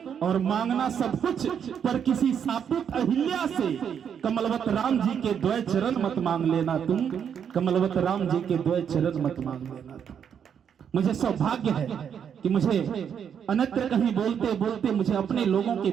और मांगना सब कुछ पर किसी सापित अहिल्या से कमलवत राम जी के द्वय चरण मत मांग लेना तुम। कमलवत राम जी के द्वय चरण मत मांग लेना तुम। मुझे सौभाग्य है कि मुझे अन्यत्र कहीं बोलते बोलते मुझे अपने लोगों के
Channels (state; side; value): quieter; left; 8.0 dB